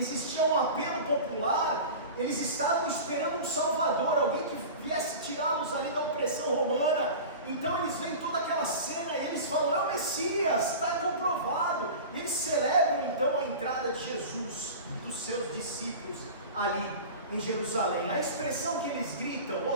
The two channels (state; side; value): inverted; both; correlation -0.33